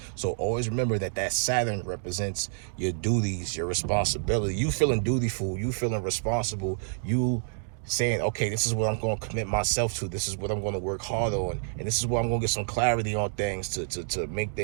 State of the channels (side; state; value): left; silent; digital silence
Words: So always remember that Saturn represents your duties, your responsibility. You feeling dutiful, you feeling responsible, you saying, okay, this is what I'm going to commit myself to, this is what I'm going to work hard on, and this is where I'm going to get some clarity on things to make